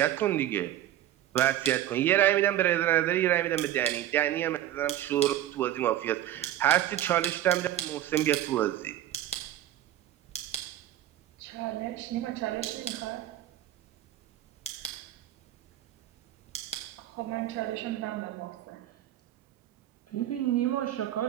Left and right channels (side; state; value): left; quieter; 12.7 dB